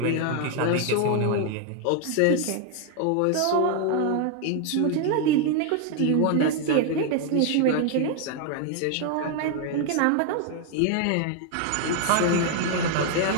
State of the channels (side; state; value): both; different; correlation 0.00